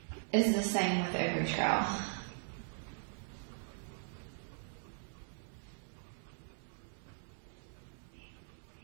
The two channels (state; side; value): silent; left; digital silence